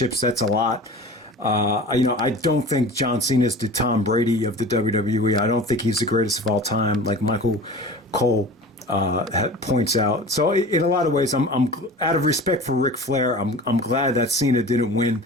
that's a lot. I don't think John Cena is the Tom Brady of the WWE. I don't think he's the greatest of all time, like Michael Cole points out. So in a lot of ways, I'm out of respect for Ric Flair, I'm glad that Cena didn't win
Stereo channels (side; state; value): both; normal; correlation 0.37